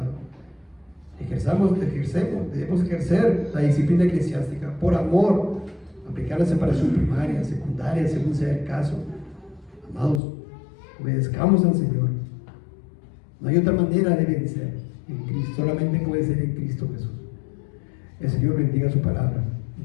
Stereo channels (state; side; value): drops out; right; at 10.2 s